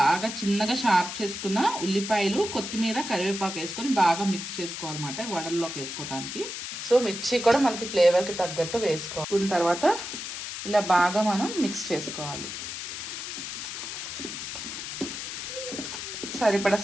బాగా చిన్నగా షార్ప్ చేసుకున్న ఉల్లిపాయలు, కొత్తిమీర, కరివేపాకు వేసుకొని బాగా మిక్స్ చేసుకోవాలన్నమాట వడల్లోకి వేసుకోవడానికి. సో మిర్చి కూడా మనకి ఫ్లేవర్కి తగ్గట్టు వేసుకోవాలి. తర్వాత ఇలా బాగా మనం మిక్స్ చేసుకోవాలి. సరిపడా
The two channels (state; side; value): noise; left; hiss, 7 dB below the sound